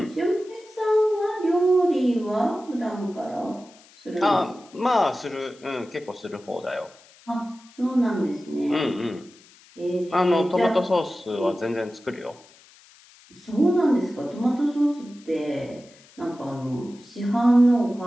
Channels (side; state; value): left; noise; hiss, 26 dB below the sound